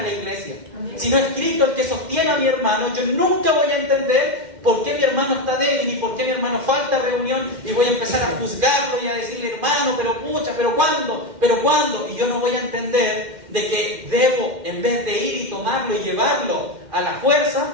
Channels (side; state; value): left; late; 2.1 ms